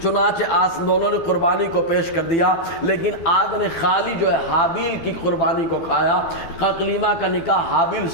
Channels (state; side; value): late; right; 12 ms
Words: چنانچہ دونوں نے قربانی کو پیش کر دیا، لیکن آگ نے خالی جو ہے حابیل کی قربانی کو کھایا۔ اقلیمہ کا نکاح حابیل